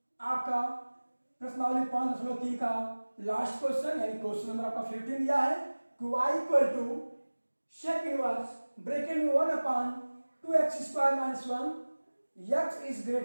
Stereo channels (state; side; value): inverted; both; correlation -1.00